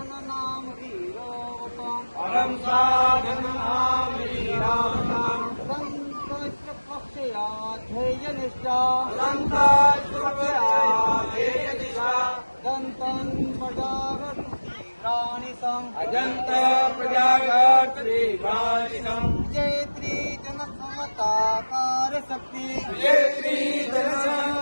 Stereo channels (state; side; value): inverted; both; correlation -1.00